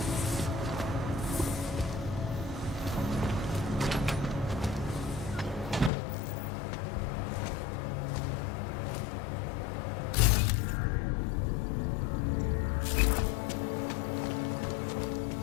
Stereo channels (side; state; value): right; drops out; at 5.9 s